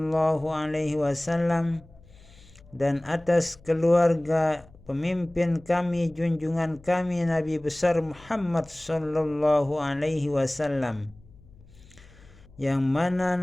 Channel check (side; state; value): left; noise; hum, 25 dB below the sound